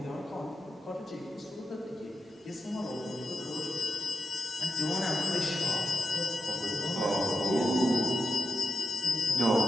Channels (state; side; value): normal; both; correlation 0.88